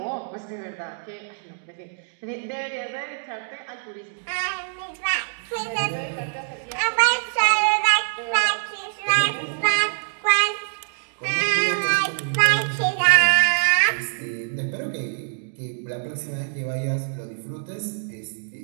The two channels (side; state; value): left; silent; digital silence